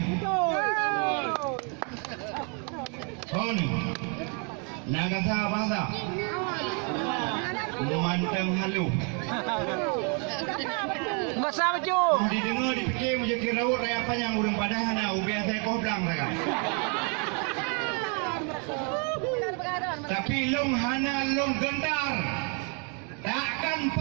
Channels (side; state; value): left; quieter; 37.3 dB